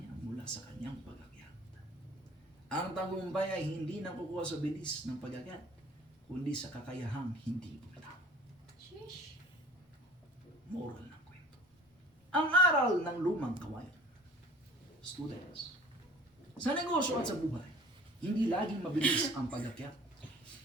mula sa kanyang pag-akyat. Ang tagumpay ay hindi nakukuha sa bilis ng pag-akyat, kundi sa kakayahang hindi bumitaw. Sheesh. Moral ng kwento. Ang aral ng lumang kawayan. Students, sa negosyo at sa buhay, hindi laging mabilis ang pag-akyat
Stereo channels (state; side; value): normal; both; correlation 0.47